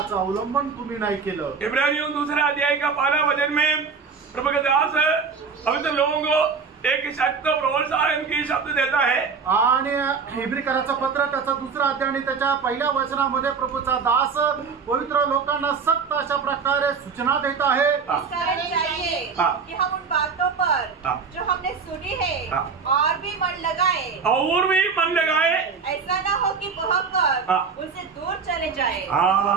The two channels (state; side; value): quieter; left; 5.5 dB